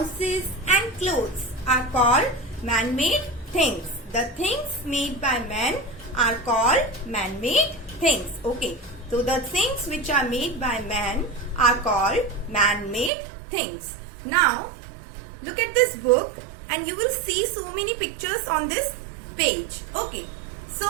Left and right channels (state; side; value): drops out; left; at 13.1 s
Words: and clothes are called man-made things. The things made by man are called man-made things. Okay. So the things which are made by man are called man-made things. Now look at this book and you will see so many pictures on this page. Okay. So